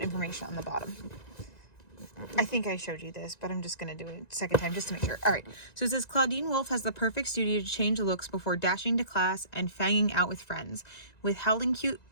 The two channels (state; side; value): late; right; 1.9 ms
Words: information on the bottom. I think I showed you this, but I'm just going to do it a second time just to make sure. All right. So it says, Clawdeen Wolf has the perfect studio to change looks before dashing to class and fanging out with friends. With howling cute